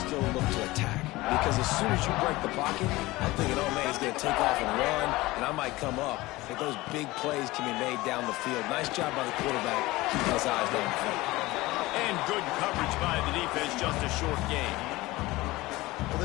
look to attack. Because as soon as you break the pocket, I'm thinking, oh, man, he's going to take off and run, and I might come up. But those big plays can be made down the field. Nice job by the quarterback, keeping his eyes down the field. And good coverage by the defense, just a short game. Well,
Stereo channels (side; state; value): right; quieter; 19.7 dB